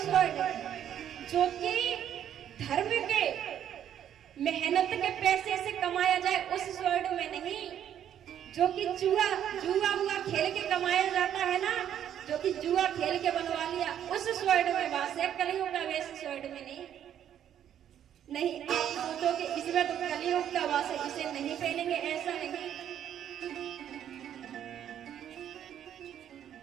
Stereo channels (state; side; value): quieter; left; 10.0 dB